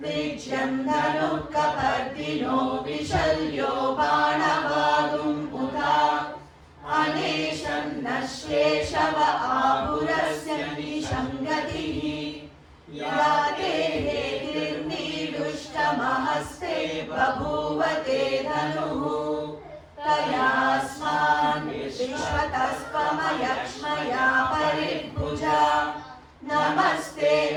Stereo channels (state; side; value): identical; both; correlation 1.00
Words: विज्यं धनुः कपर्दिनो विशल्यो बाणवागुं पुता अनेशं नश्येशव आहुरस्य निशङ्गतिः या देहेर्निदुष्टमहस्ते बभूव ते धनुः तयास्मान् विश्वतस्त्वमयक्ष्मया परिभुजा नमस्ते